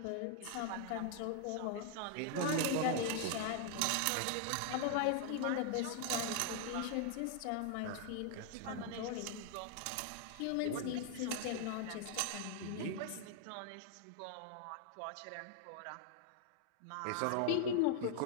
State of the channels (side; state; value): both; different; correlation 0.00